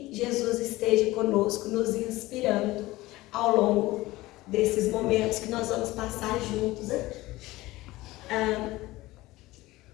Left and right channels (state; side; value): quieter; right; 18.7 dB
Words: Jesus esteja conosco, nos inspirando ao longo desses momentos que nós vamos passar juntos aqui.